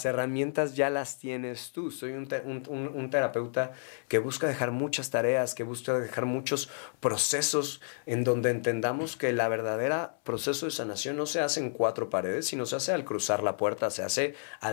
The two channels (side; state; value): right; silent; 57 dB below the other